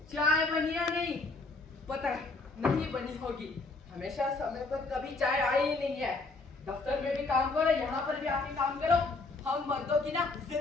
चाय बनी या नहीं? पता है नहीं बनी होगी, हमेशा समय पर कभी चाय आई ही नहीं है। दफ्तर में भी काम करो, यहाँ पर भी आके काम करो। हम मर्दों की ना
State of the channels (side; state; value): right; quieter; 3.6 dB